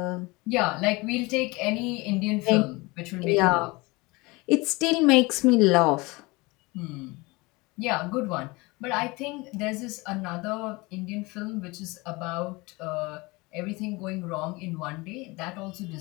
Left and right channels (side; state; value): right; quieter; 24.1 dB